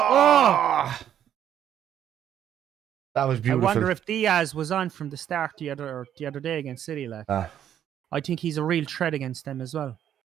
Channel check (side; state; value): left; quieter; 10.1 dB